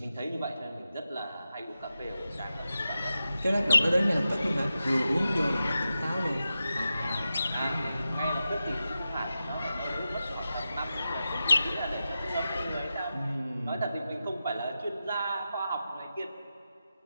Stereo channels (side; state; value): both; inverted; correlation -0.91